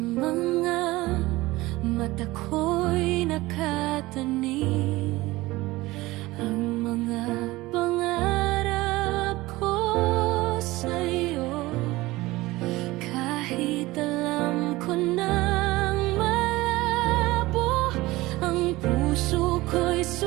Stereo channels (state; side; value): quieter; left; 19.5 dB